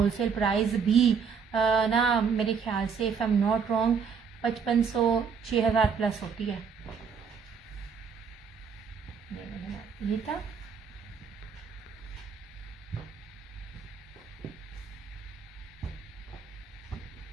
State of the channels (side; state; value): left; quieter; 6.2 dB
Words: प्राइस भी ना मेरे ख्याल से, if I am not wrong, 5500 6000 plus होती है। ये था